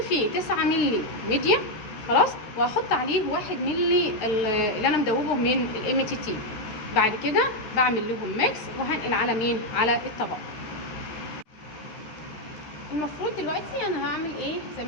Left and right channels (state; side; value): late; right; 13 ms